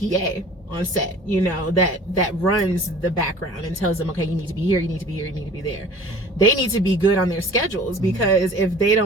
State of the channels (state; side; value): normal; both; correlation 0.46